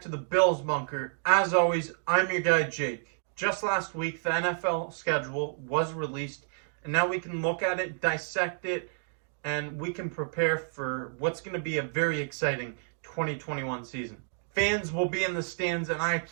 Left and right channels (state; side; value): silent; left; 58 dB below the other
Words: to the Bills Bunker. As always, I'm your guy Jake. Just last week, the NFL schedule was released, and now we can look at it, dissect it, and we can prepare for what's going to be a very exciting 2021 season. Fans will be in the stands, and I